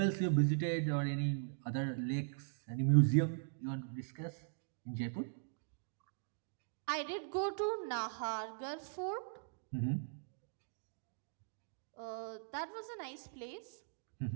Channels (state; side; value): silent; left; digital silence